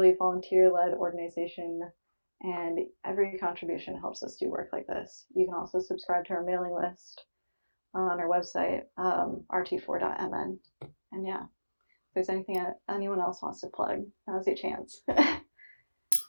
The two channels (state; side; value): inverted; both; correlation -1.00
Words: volunteer-led organization, and every contribution helps us do work like this. You can also subscribe to our mailing list on our website, rt4.mn. And yeah, if there's anything anyone else wants to plug, now's your chance.